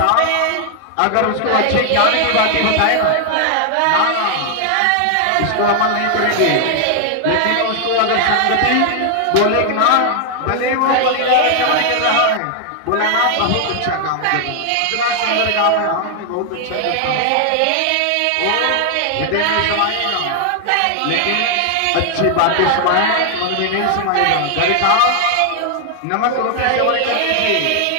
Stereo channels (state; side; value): different; both; correlation 0.00